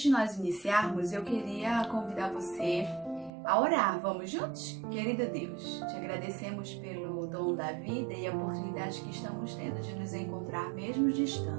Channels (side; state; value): left; drops out; at 3.3 s